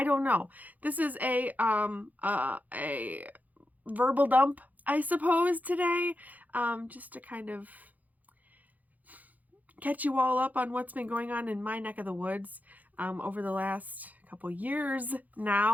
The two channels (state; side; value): late; left; 0.080 ms